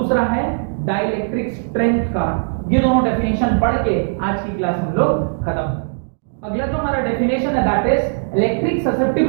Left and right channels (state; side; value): silent; left; digital silence